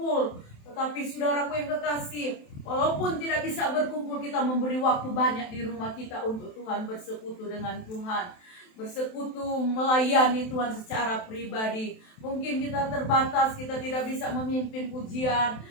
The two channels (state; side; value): late; right; 27 ms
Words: Tetapi saudaraku yang kekasih, walaupun tidak bisa berkumpul, kita memberi waktu banyak di rumah kita untuk Tuhan, bersekutu dengan Tuhan, bersekutu melayani Tuhan secara pribadi. Mungkin kita terbatas, kita tidak bisa memimpin pujian,